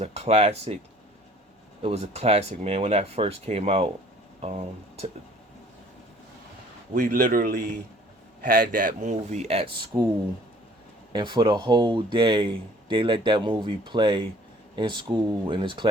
a classic. It was a classic, man. When that first came out, we literally had that movie at school, and for the whole day they let that movie play in school in this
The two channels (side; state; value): both; normal; correlation 0.54